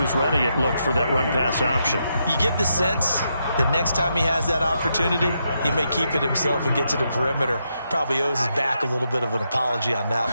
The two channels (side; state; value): both; inverted; correlation -0.81